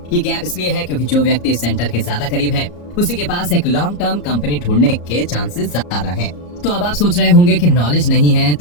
ये गैप इसलिए है क्योंकि जो व्यक्ति सेंटर के ज्यादा करीब है उसी के पास एक लॉन्ग टर्म कंपनी ढूंढने के चांसेस ज्यादा हैं। तो अब आप सोच रहे होंगे कि नॉलेज नहीं है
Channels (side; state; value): right; late; 34 ms